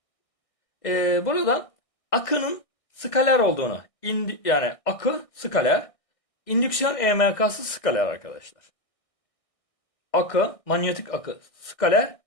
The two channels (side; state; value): right; late; 1.6 ms